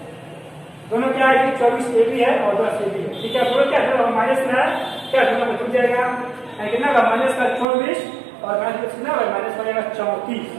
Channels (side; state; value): left; drops out; at 7.7 s